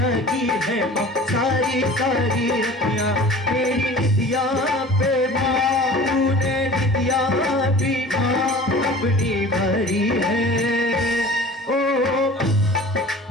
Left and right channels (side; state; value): both; normal; correlation 0.42